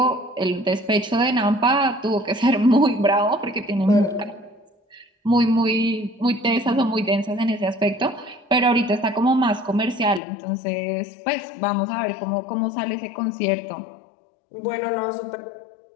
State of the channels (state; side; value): drops out; right; at 10.2 s